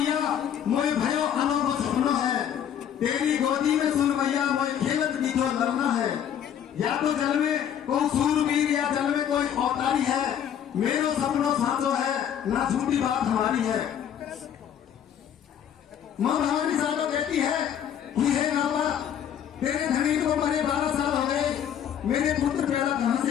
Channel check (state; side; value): quieter; right; 9.3 dB